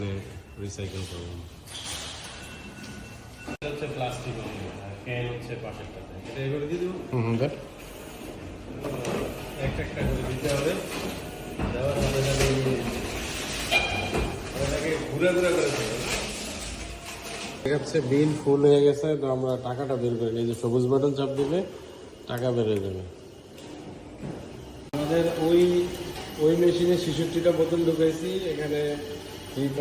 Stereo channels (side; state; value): both; identical; correlation 1.00